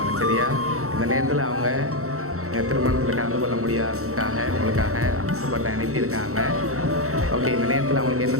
சரியா? இந்த நேரத்தில் அவங்க திருமணத்தில் கலந்து கொள்ள முடியாததுக்காக உங்களுக்காக ஆசைப்பட்டு அனுப்பியிருக்காங்க. ஓகே, இந்த நேரத்தில் அவங்களுக்கு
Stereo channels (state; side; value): late; left; 0.64 ms